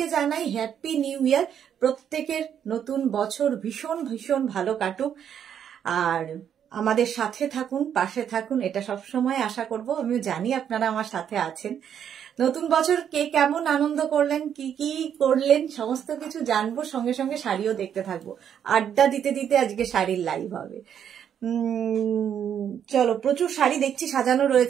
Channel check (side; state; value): left; quieter; 8.9 dB